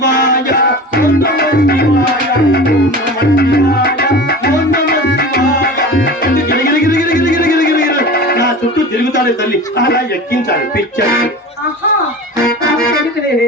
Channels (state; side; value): normal; both; correlation 0.34